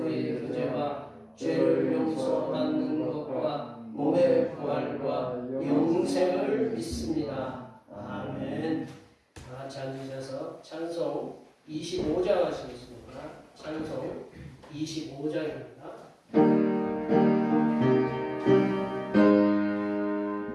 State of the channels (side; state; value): both; identical; correlation 1.00